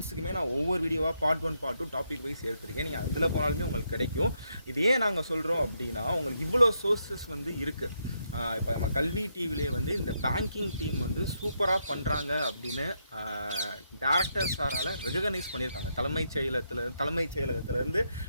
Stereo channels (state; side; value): inverted; both; correlation -0.79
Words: நான் ஒவ்வொரு வீடியோவாக பார்ட் 1, பார்ட் 2 டாபிக் வைஸ் எடுத்துருக்கேன். நீங்கள் அதில் போனாலுமே உங்களுக்கு கிடைக்கும். இது ஏன் நாங்கள் சொல்கிறோம் அப்படின்னா, உங்களுக்கு இவ்வளோ சோர்ஸஸ் வந்து இருக்குது. இப்போ நம்ம கல்வி டிவிலே வந்து இந்த பேங்கிங் டீம் வந்து சூப்பராக பண்ணுறாங்க அப்படின்னு டேரக்டர் சாரால் ரெகனைஸ் பண்ணியிருக்காங்க. தலைமைச் செயலகத்திலேருந்து